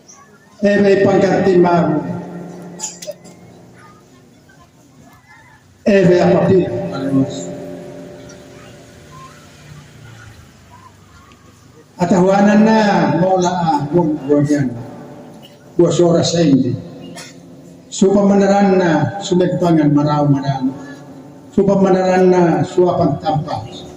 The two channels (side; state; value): both; identical; correlation 1.00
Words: May pangkati mago. May apapil. Alos. Atahuanan na mola buwan buwas oras sa hindi. Supamanaran na sumegpangan maraw marano. Supamanaran na suwapang tampa.